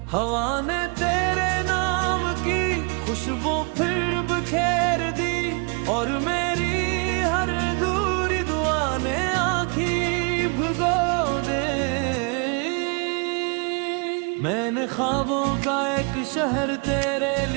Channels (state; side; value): quieter; left; 34.2 dB